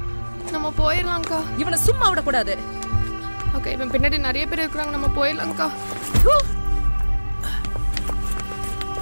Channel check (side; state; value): both; inverted; correlation -1.00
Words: நம்ம போயிடலாம் அக்கா. இவனை சும்மா விடக்கூடாது. அக்கா இவன் பின்னாடி நிறைய பேர் இருக்கிறாங்க. நம்ம போயிடலாம் அக்கா.